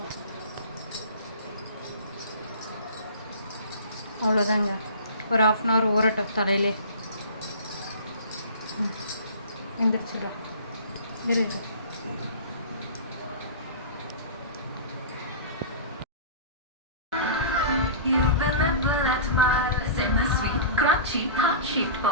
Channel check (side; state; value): both; inverted; correlation -0.37